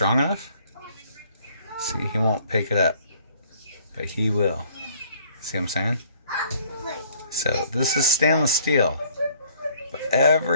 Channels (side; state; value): both; inverted; correlation -0.58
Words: enough, see, he won't pick it up, but he will. See what I'm saying? So this is stainless steel, but